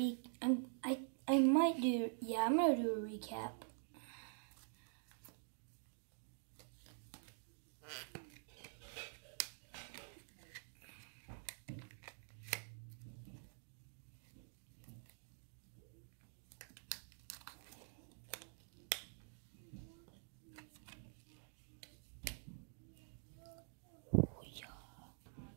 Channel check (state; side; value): silent; left; digital silence